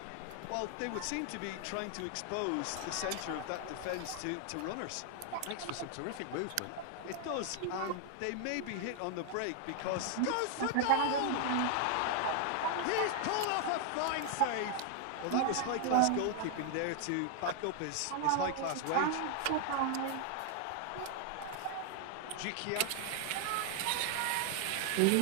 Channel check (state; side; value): different; both; correlation 0.00